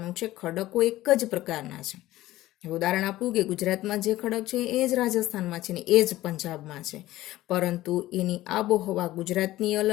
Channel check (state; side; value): quieter; right; 16.1 dB